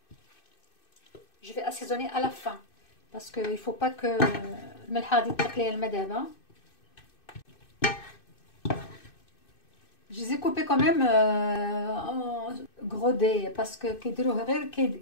Je vais assaisonner à la fin. Parce qu'il ne faut pas que الملحة غادي تقلي الماء دابا. Je les ai coupés quand même en gros dés parce que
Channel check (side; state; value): right; late; 2.6 ms